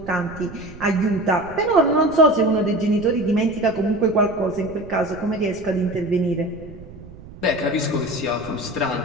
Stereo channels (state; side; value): noise; right; rumble, 17 dB below the sound